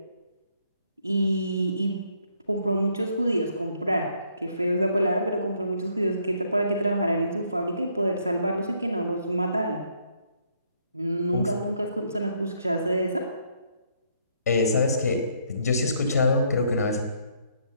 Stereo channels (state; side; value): inverted; both; correlation -0.70